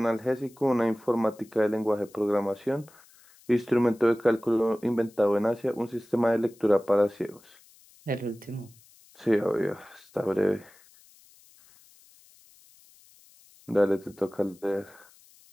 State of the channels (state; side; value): noise; left; hiss, 27 dB below the sound